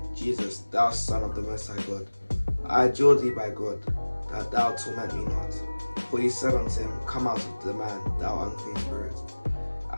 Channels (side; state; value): both; inverted; correlation -1.00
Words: Jesus, thou Son of the Most High God? I adjure thee by God, that thou torment me not. For he said unto him, Come out of the man, thou unclean spirit.